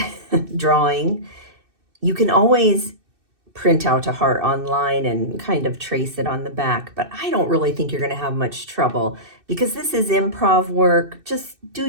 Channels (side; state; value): left; late; 2.6 ms